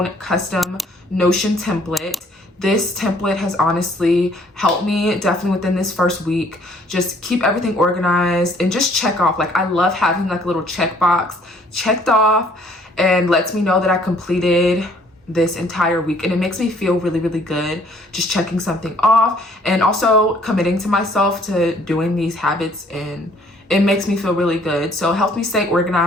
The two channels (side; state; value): both; normal; correlation 0.60